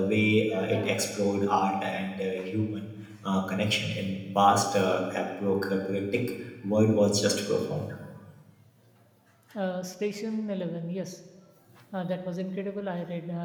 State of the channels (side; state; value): both; identical; correlation 1.00